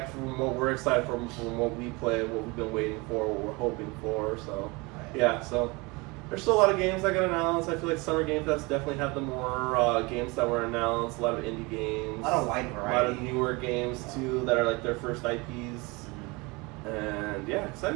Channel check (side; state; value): left; quieter; 25.9 dB